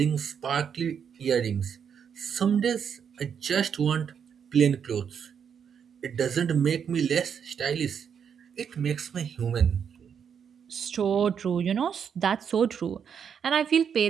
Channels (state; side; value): quieter; left; 7.5 dB